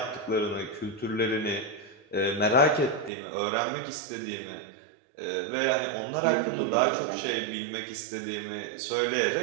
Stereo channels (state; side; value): drops out; left; at 3.1 s